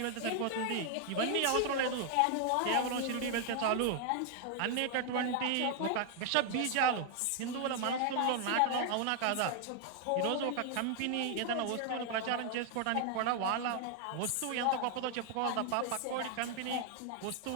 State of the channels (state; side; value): different; both; correlation 0.00